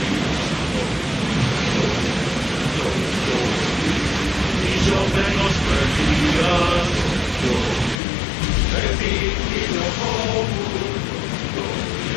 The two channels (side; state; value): right; drops out; at 8.0 s